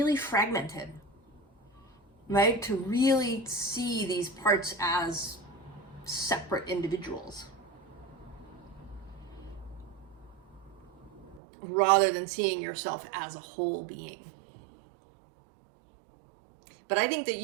fragmented, right? To really see these parts as separate individuals, rather than seeing yourself as a whole being. But I think that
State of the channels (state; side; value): drops out; left; at 11.4 s